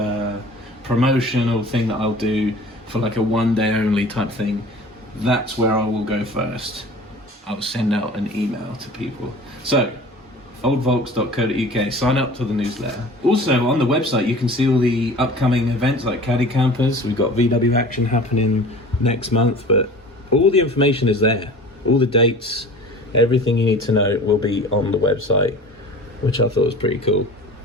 promotional thing that I'll do for like a one day only type thing, that's where I will go first. I'll send out an email to people. So oldvolks.co.uk, sign up to the newsletter. Also on the website you can see all the upcoming events like Caddy Campers. We've got VW Action happening next month, but all the information is there, all the dates. Everything you need to know will be on the website, which I thought was pretty cool.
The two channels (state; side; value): normal; both; correlation 0.42